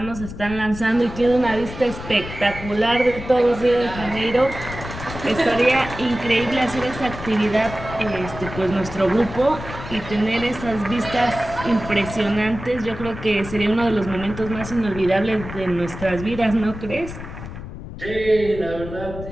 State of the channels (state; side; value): noise; left; rumble, 11 dB below the sound